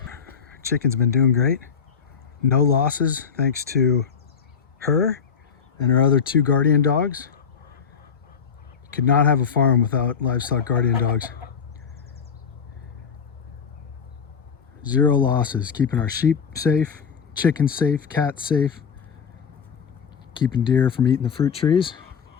Chicken's been doing great. No losses thanks to her and her other 2 guardian dogs. Could not have a farm without livestock guardian dogs. Zero losses, keeping our sheep safe, chickens safe, cats safe, keeping deer from eating the fruit trees.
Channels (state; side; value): quieter; right; 6.6 dB